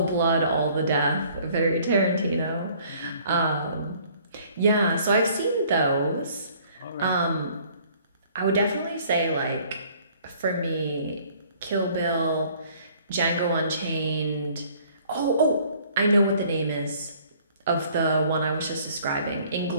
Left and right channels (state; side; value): inverted; both; correlation -0.58